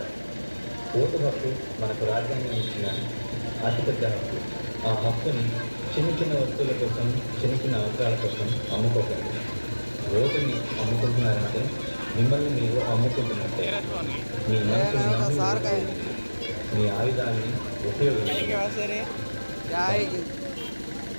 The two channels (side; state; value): both; inverted; correlation -1.00